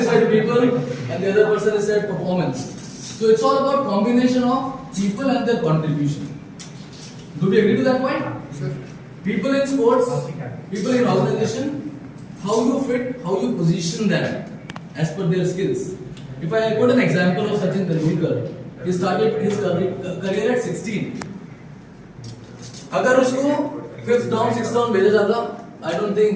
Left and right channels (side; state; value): both; identical; correlation 1.00